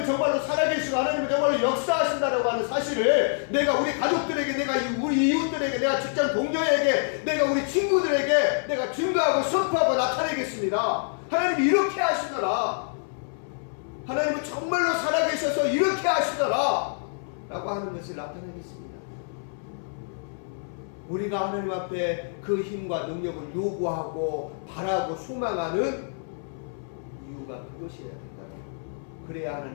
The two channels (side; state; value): right; silent; 60 dB below the other